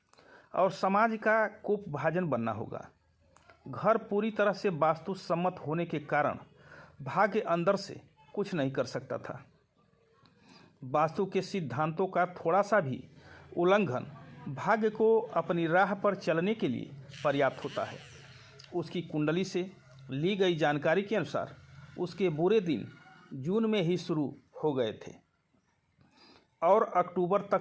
और समाज का कोपभाजन बनना होगा। घर पूरी तरह से वास्तु सम्मत होने के कारण भाग्य अंदर से कुछ नहीं कर सकता था। वास्तु के सिद्धांतों का थोड़ा सा भी उल्लंघन भाग्य को अपनी राह पर चलने के लिए पर्याप्त होता है। उसकी कुंडली से ली गई जानकारी के अनुसार उसके बुरे दिन जून में ही शुरू हो गए थे और अक्टूबर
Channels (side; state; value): both; identical; correlation 1.00